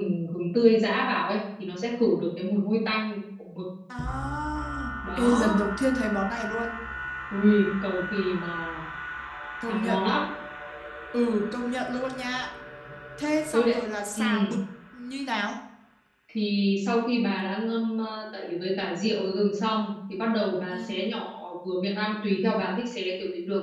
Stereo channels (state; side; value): identical; both; correlation 1.00